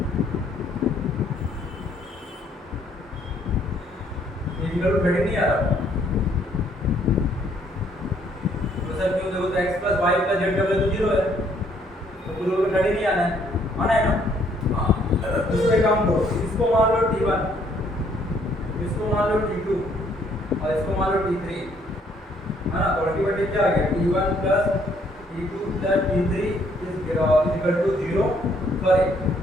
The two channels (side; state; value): both; normal; correlation 0.66